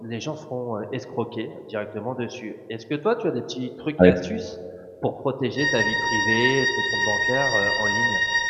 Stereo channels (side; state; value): both; identical; correlation 1.00